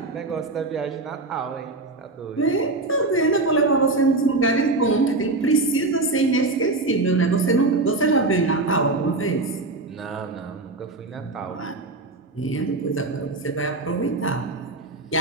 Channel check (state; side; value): quieter; left; 3.2 dB